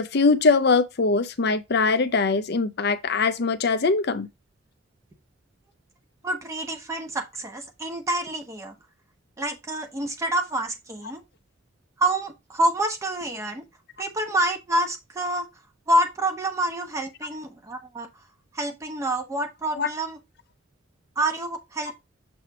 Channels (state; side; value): normal; both; correlation 0.15